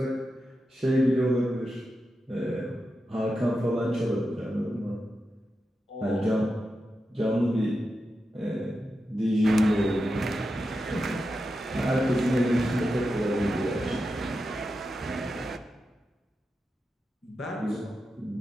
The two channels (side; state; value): both; normal; correlation 0.89